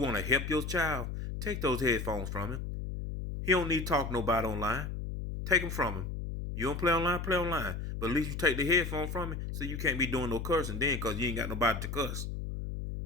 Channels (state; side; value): noise; left; hum, 5 dB below the sound